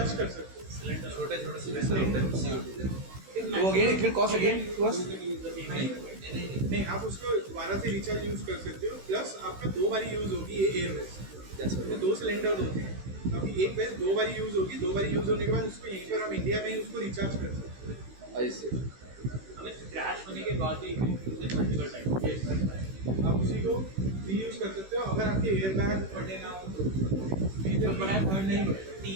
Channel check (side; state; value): left; late; 16 ms